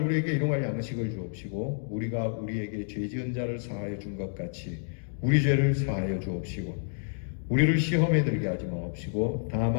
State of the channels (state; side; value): silent; right; digital silence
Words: 우리에게 일용할 양식을 주옵시고 우리가 우리에게 죄 지은 자를 사하여 준 것 같이 우리 죄를 사하여 주옵시고 우리를 시험에 들게 하지 마옵시고